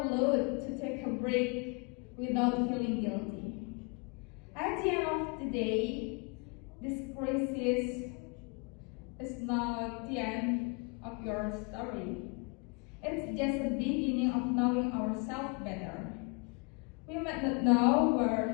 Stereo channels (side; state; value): right; quieter; 32.7 dB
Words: to take a break without feeling guilty. At the end of the day, this crisis is not the end of your story. It's just the beginning of knowing ourselves better. We might not know